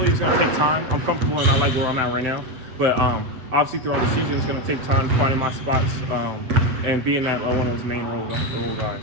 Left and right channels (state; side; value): late; left; 8.1 ms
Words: it's going to take time. I'm comfortable and I like where I'm at right now. But obviously throughout the season, it's going to take time finding my spots and being that one of those main role guys.